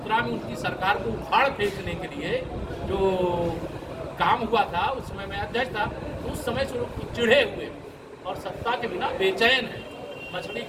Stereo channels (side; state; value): both; identical; correlation 1.00